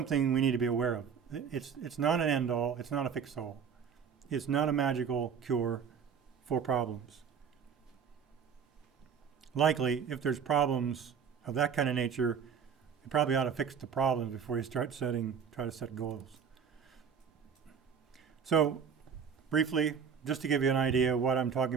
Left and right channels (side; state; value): left; quieter; 6.9 dB